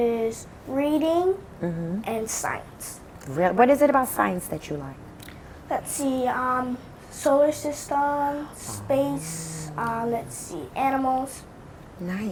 reading and science. What is it about science that you like? Let's see, solar system, space, let's see, animals. Nice.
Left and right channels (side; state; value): both; identical; correlation 1.00